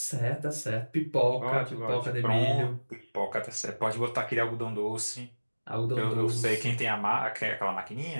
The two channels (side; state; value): both; inverted; correlation -1.00